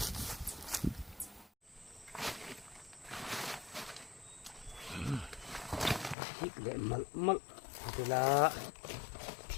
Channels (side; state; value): right; drops out; at 6.2 s